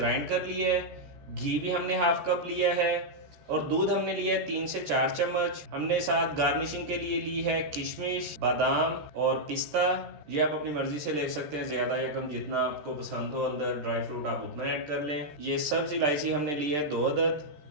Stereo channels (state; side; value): late; left; 14 ms